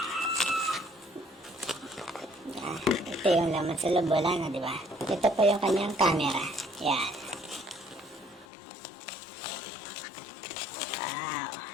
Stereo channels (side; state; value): right; drops out; at 8.5 s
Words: Ito yung laman sa loob, wala na, diba? Ito po yung kanyang camera. Yan. Wow.